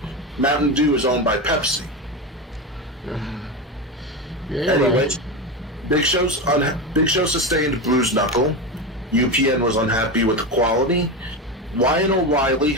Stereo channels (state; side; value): normal; both; correlation 0.18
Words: Mountain Dew is owned by Pepsi. Yeah, anyway, right. Big Show sustained bruised knuckle. UPN was unhappy with the quality. Ryan O'Reilly